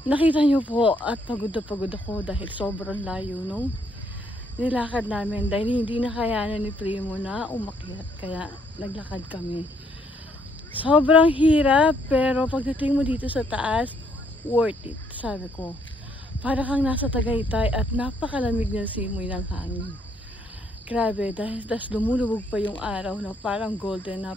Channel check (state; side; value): normal; both; correlation 0.70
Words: Nakita nyo po at pagod na pagod ako dahil sobrang layo nung nilakad namin dahil hindi na kayanan ni Primo na umakyat, kaya naglakad kami. Sobrang hirap pero pagdating mo dito sa taas, worth it, sabi ko. Para kang nasa Tagaytay at napakalamig ng simoy ng hangin. Grabe, dahil lumulubog pa yung araw na parang golden.